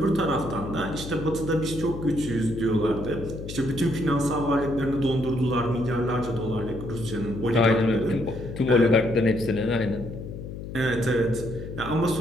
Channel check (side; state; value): left; noise; hum, 9 dB below the sound